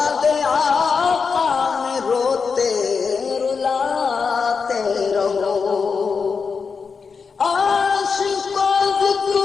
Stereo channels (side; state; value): right; quieter; 5.4 dB